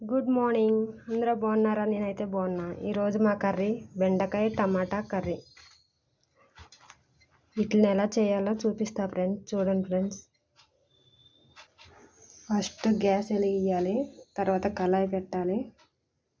good morning. అందరూ బాగున్నారా? నేనైతే బాగున్నా. ఈరోజు మా కర్రీ బెండకాయ టమాటా కర్రీ. వీటిని ఎలా చేయాలో చూపిస్తా ఫ్రెండ్స్. చూడండి ఫ్రెండ్స్, ఫస్ట్ గ్యాస్ వెలిగియాలి, తర్వాత కళాయి పెట్టాలి.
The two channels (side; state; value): both; identical; correlation 1.00